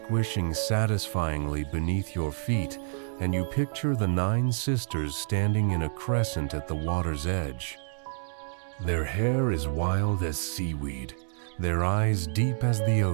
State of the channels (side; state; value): left; silent; 59 dB below the other